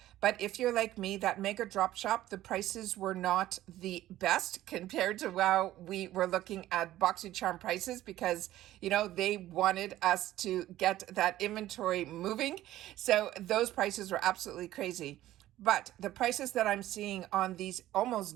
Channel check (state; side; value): quieter; left; 14.4 dB